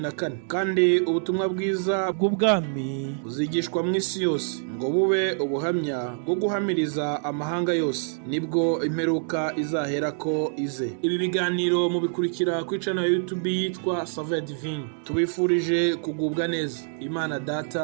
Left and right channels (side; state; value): left; silent; digital silence